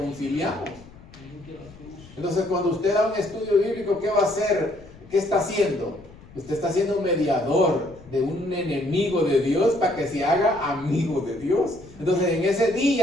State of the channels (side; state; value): left; noise; rumble, 21 dB below the sound